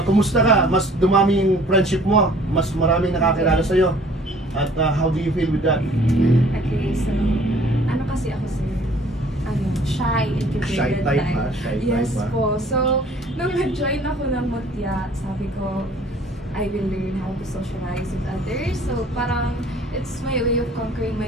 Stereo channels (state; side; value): normal; both; correlation 0.54